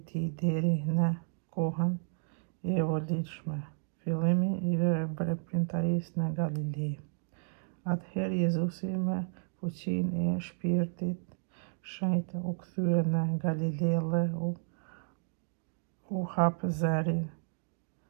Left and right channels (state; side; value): silent; left; digital silence